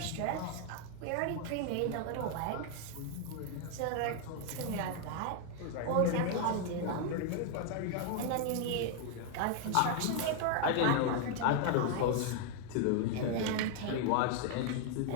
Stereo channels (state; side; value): different; both; correlation 0.00